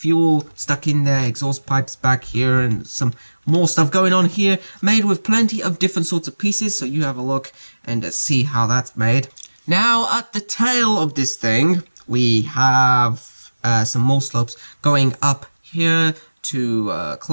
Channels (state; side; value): inverted; both; correlation -1.00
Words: stuck in there, exhaust pipes back here, and some more stuff going on here, made with plenty of different sorts of pieces, so you have a look and see how that's made. Now, at the tail of this thing, we have some more slopes going up here to